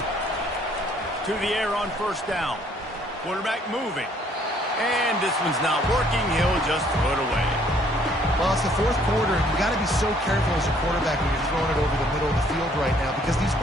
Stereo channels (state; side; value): normal; both; correlation 0.63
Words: through the air on first down. Quarterback moving. And this one's not working. He'll just throw it away. Well, it's the fourth quarter, and you've got to be so careful as a quarterback when you're throwing it over the middle of the field right now because these